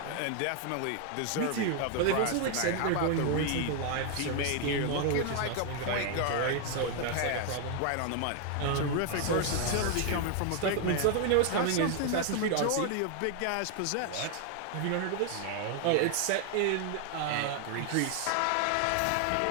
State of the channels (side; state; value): both; different; correlation 0.00